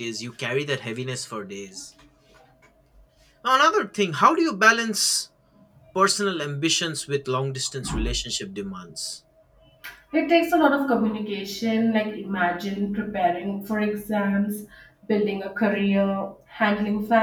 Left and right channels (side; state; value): both; identical; correlation 1.00